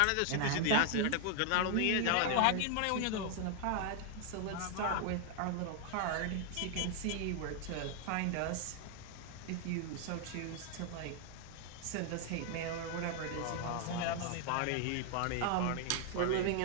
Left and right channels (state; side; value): different; both; correlation 0.00